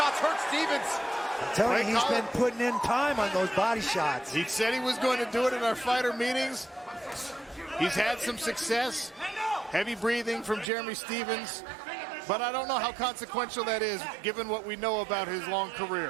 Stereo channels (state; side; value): drops out; left; at 10.7 s